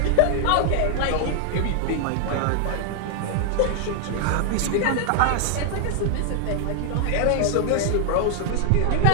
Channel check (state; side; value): different; both; correlation 0.00